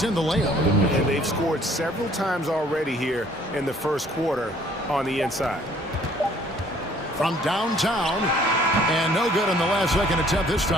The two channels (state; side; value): normal; both; correlation 0.59